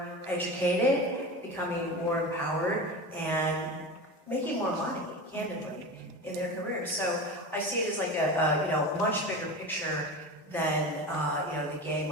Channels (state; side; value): normal; both; correlation 0.28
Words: educated, becoming more empowered, and making more money. candidly, in their careers. So I see it as like a much bigger picture than the game